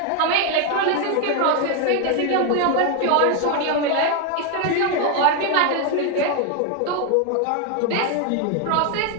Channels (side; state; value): both; different; correlation 0.01